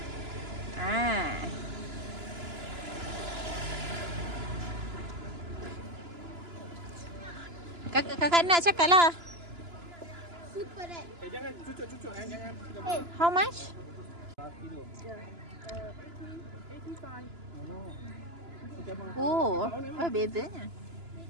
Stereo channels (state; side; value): late; left; 2.9 ms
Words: Kakak nak cakap lah. Super red. Jangan cucuk-cucuk jangan. How much? 5 kilo. 85. Oh, bezanya.